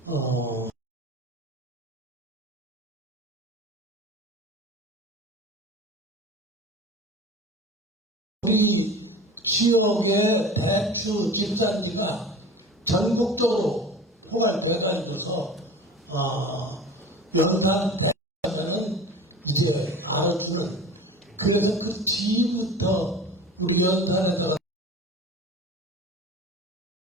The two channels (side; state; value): both; normal; correlation 0.37